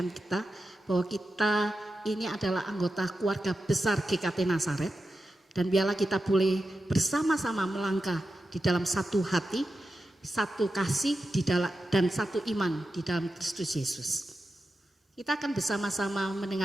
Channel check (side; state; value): both; normal; correlation 0.90